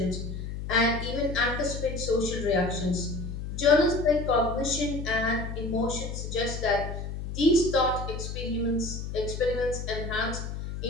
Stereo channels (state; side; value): noise; left; hum, 6 dB below the sound